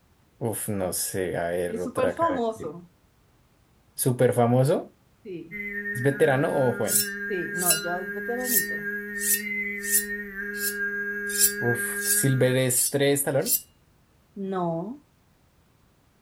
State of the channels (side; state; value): both; identical; correlation 1.00